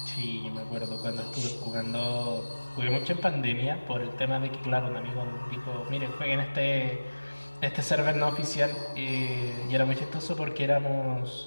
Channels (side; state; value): both; inverted; correlation -1.00